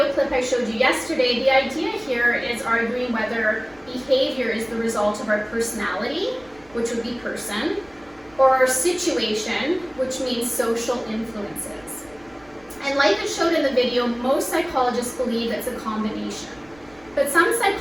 clip I showed you yesterday, the idea here is arguing whether behavior is the result of our personality, which would be person, or our situation, which means social influences. And like I showed in the video, most psychologists believe it's a combination. But some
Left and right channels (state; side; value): noise; right; rumble, 28 dB below the sound